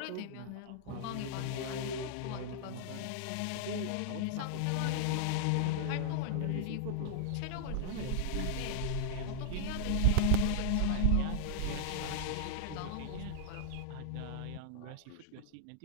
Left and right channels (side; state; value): both; different; correlation -0.01